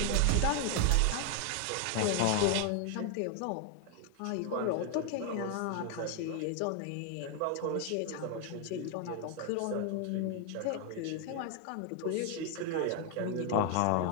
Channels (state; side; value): different; both; correlation 0.00